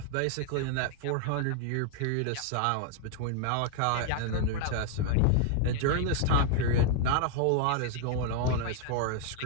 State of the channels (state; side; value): different; both; correlation 0.00